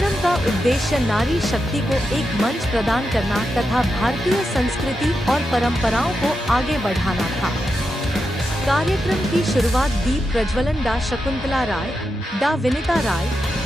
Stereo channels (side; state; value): both; normal; correlation 0.87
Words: का उद्देश्य नारी शक्ति को एक मंच प्रदान करना तथा भारतीय संस्कृति और परंपराओं को आगे बढ़ाना था। कार्यक्रम की शुरुआत दीप प्रज्वलन डा शकुंतला राय, डा विनीता राय,